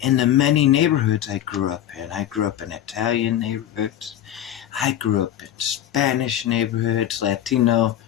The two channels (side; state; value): right; quieter; 11.4 dB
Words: the many neighborhoods I grew up in. I grew up in Italian neighborhoods. I grew up in Spanish neighborhoods, Latino,